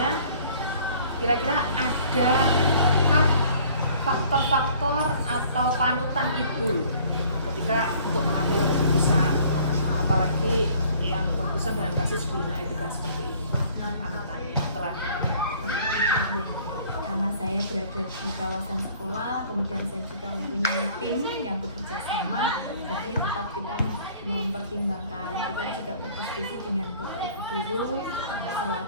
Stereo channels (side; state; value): both; inverted; correlation -0.54